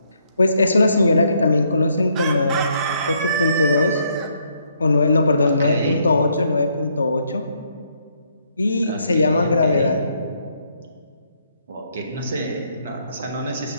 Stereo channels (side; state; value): both; inverted; correlation -0.72